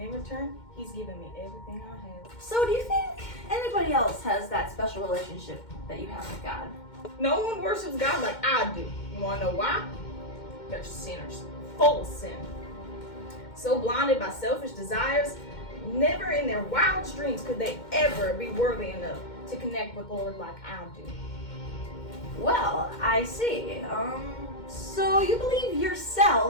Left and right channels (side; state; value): right; late; 2.1 ms